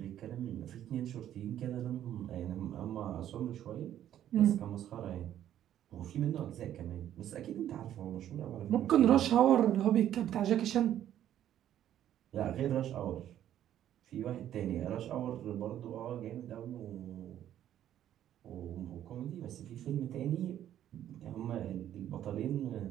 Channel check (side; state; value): left; quieter; 11.3 dB